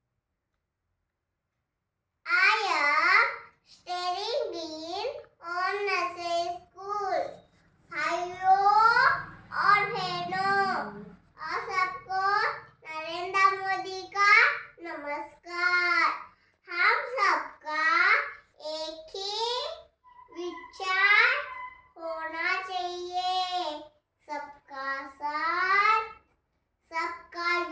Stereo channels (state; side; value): identical; both; correlation 1.00